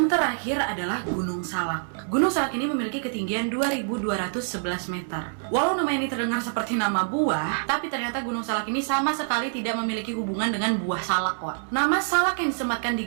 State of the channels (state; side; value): silent; left; digital silence